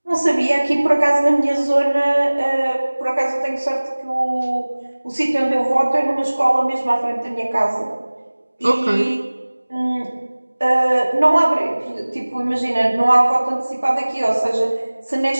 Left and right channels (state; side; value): inverted; both; correlation -1.00